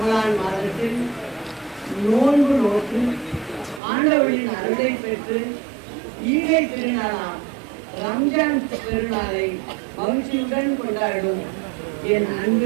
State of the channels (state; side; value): drops out; left; at 3.8 s